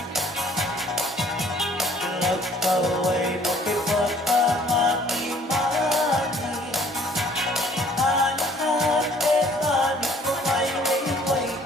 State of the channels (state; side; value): normal; both; correlation 0.57